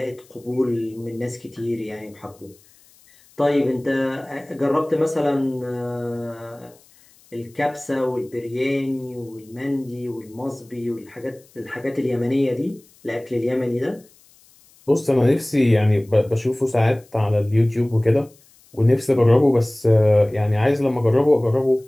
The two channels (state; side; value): noise; left; hiss, 29 dB below the sound